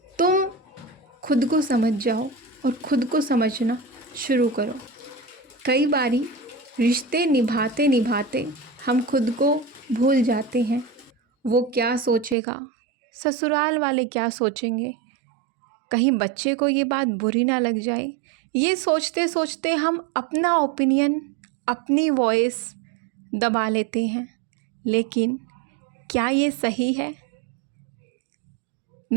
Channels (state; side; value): drops out; left; at 12.4 s